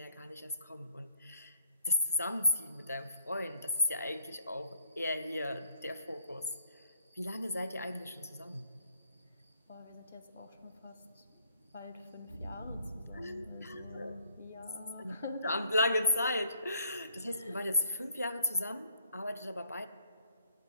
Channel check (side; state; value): both; inverted; correlation -0.68